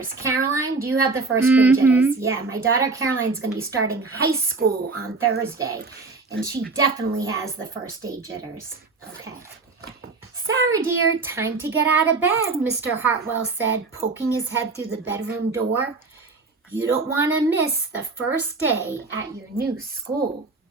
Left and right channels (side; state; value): left; quieter; 4.0 dB